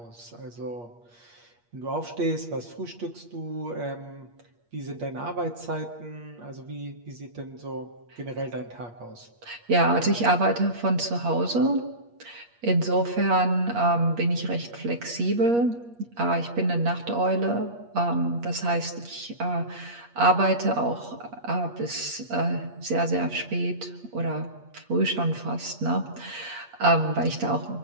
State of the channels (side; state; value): left; late; 8.5 ms